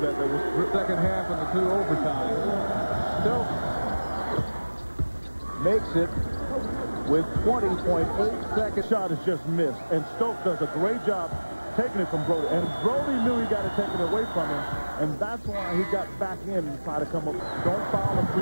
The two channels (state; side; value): inverted; both; correlation -1.00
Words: that. That was second half and the 2 overtime. Stokes makes it with 20.8 seconds. Shot is just missed, and Stokes does a great job taking it from Brody. And Brody knew he got to take it away from him, and that's why he got back in and tried to come up. Don't foul a